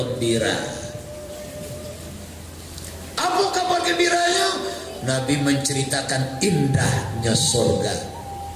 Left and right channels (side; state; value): both; identical; correlation 1.00